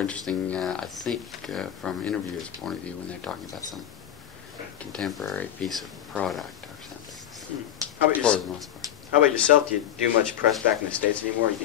I think, from an interviewer's point of view when they're talking about some contemporary piece of product or something. Mm. For the most part. How about yourself? Do you do much press back in the States anymore? Or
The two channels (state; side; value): quieter; right; 10.9 dB